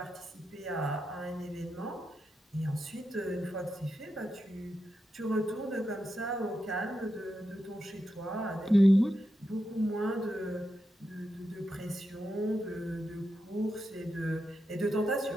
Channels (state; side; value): normal; both; correlation 0.87